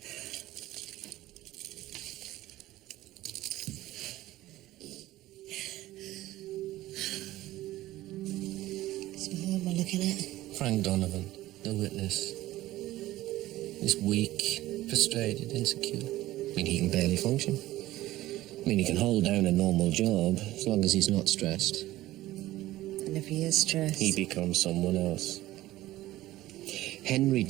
So who am I looking at? Frank Donovan, the witness. He's weak, frustrated, insecure. I mean, he can barely function. I mean, he can hold down a normal job as long as he's not stressed. And if he is stressed? He becomes someone else. Henry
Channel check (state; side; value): quieter; left; 16.1 dB